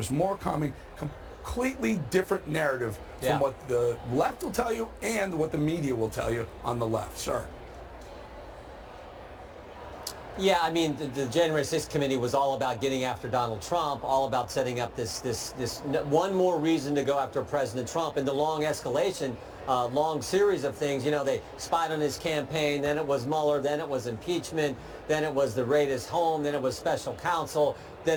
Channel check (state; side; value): identical; both; correlation 1.00